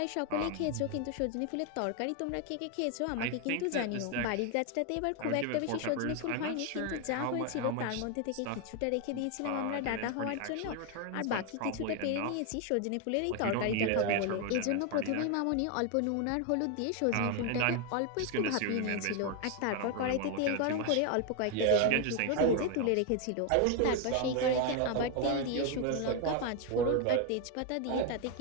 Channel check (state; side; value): different; both; correlation 0.01